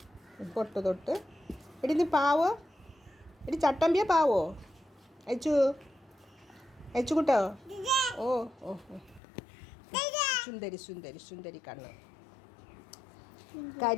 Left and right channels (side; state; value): right; drops out; at 9.2 s